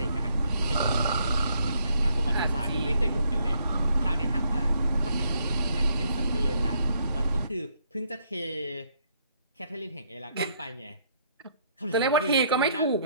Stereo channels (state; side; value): inverted; both; correlation -0.70